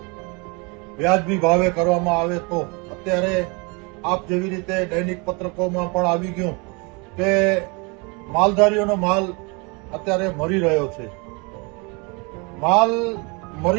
વ્યાજબી ભાવે કરવામાં આવે તો અત્યારે આપ જેવી રીતે દૈનિક પત્રકોમાં પણ આવી ગયું કે માલધારીઓનો માલ અત્યારે મરી રહ્યો છે. માલ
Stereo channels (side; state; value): left; quieter; 30.2 dB